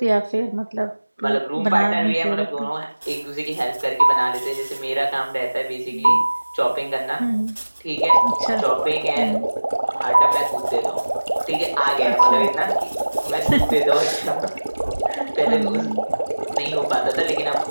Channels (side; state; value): both; inverted; correlation -1.00